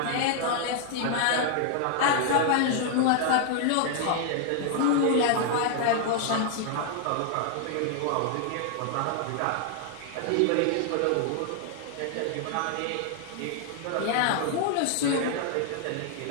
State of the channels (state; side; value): different; both; correlation 0.00